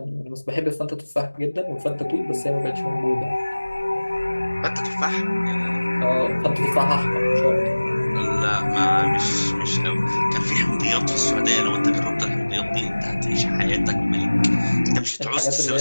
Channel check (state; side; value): inverted; both; correlation -1.00